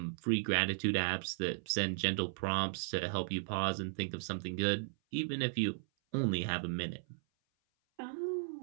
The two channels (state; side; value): silent; left; 54 dB below the other